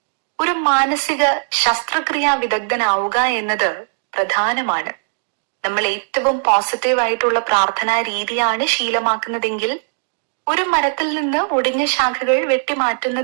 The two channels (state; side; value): silent; left; digital silence